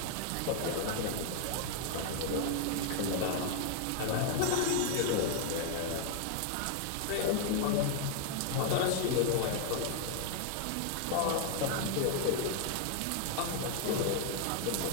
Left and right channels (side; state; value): both; different; correlation 0.00